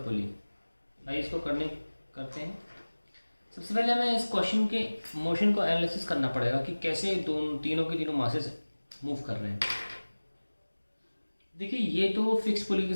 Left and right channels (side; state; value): both; inverted; correlation -1.00